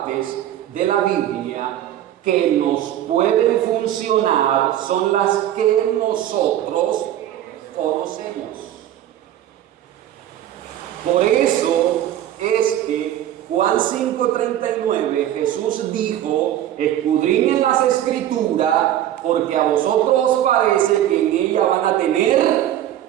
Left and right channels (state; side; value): quieter; left; 12.0 dB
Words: de la Biblia que nos pueden funcionar son las que nosotros conocemos. Por eso es que Juan 5:39 Jesús dijo, escudriñen las Escrituras porque a vosotros os parece que en ella van a tener